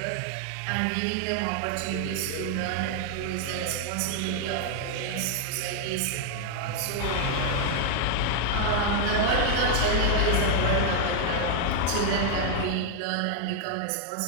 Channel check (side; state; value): both; different; correlation 0.00